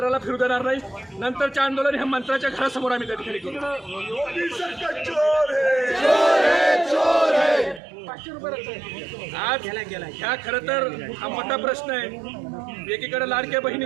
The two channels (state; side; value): drops out; left; at 7.8 s